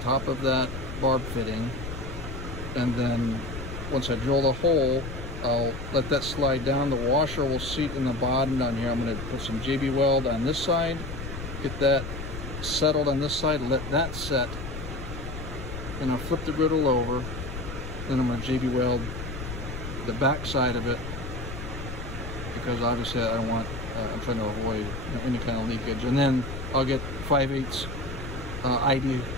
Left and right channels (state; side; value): noise; left; rumble, 8 dB below the sound